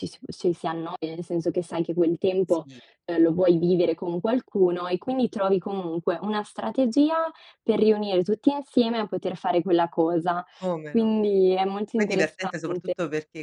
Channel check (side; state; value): both; identical; correlation 1.00